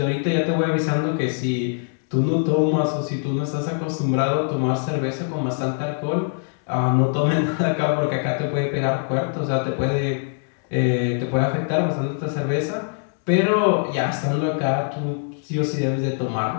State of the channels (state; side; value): silent; right; 59 dB below the other